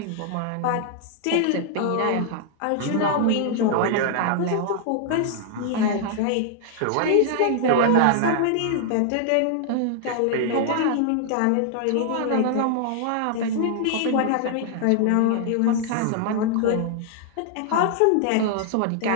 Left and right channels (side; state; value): both; different; correlation 0.00